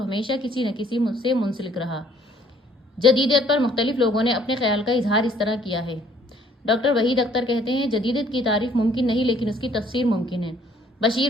کسی نہ کسی سے منسلک رہا۔ جدیدیت پر مختلف لوگوں نے اپنے خیال کا اظہار اس طرح کیا ہے۔ ڈاکٹر وحید اختر کہتے ہیں جدیدیت کی تعریف ممکن نہیں لیکن اس کی تفسیر ممکن ہے۔ بشیر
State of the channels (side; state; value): both; normal; correlation 0.61